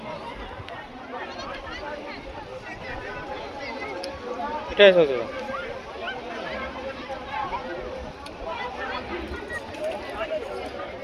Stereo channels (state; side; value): identical; both; correlation 1.00